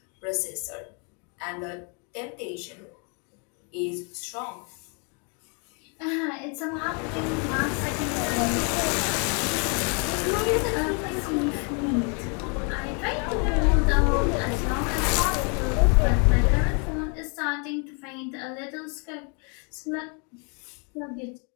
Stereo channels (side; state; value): right; quieter; 36.9 dB